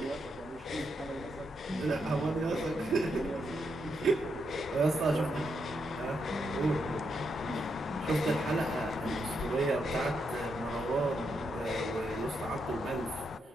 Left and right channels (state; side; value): normal; both; correlation 0.81